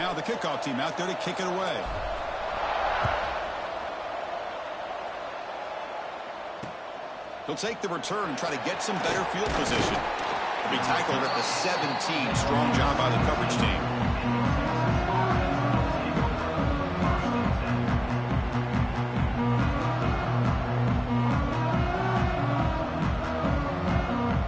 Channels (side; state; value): both; identical; correlation 1.00